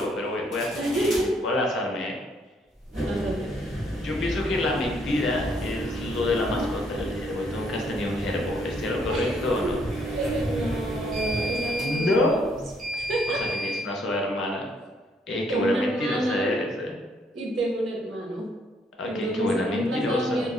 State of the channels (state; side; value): normal; both; correlation 0.69